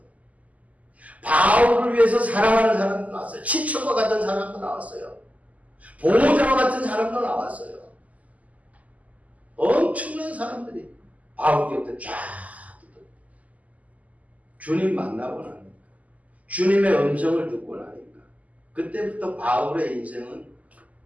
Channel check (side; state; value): left; late; 0.073 ms